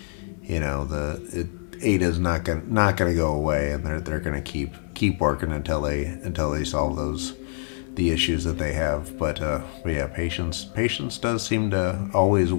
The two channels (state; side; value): silent; right; digital silence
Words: Ada's not gonna go away, and they're gonna keep working until they solve the issues that they have. But yeah, patience does seem to always